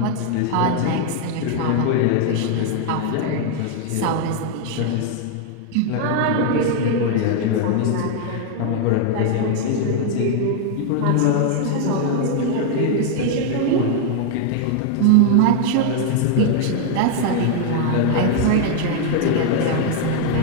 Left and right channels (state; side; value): different; both; correlation 0.00